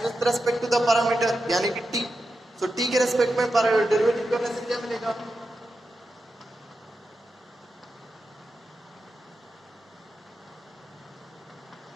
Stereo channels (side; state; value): both; normal; correlation 0.89